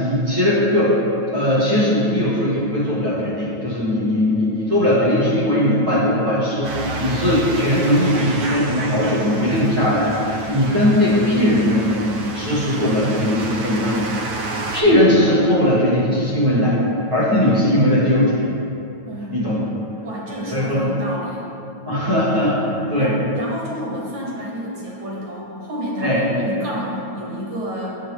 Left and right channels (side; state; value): left; late; 9.2 ms